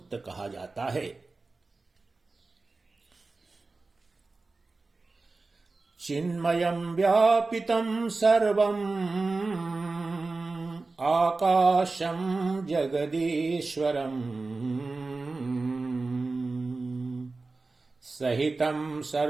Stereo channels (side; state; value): left; quieter; 3.7 dB